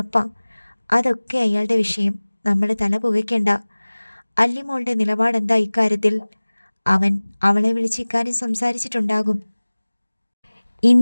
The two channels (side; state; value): both; inverted; correlation -1.00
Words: അതൊക്കെ അയാളുടെ വിഷയം. നമ്മൾ തല പുകയ്ക്കണ്ട. അല്ലിമോളുടെ നിലപാടെന്താ ഇക്കാര്യത്തിൽ? അവൻ അവളെ വിളിച്ച് ഇക്കാര്യം സംസാരിച്ചിട്ടുണ്ടാകും.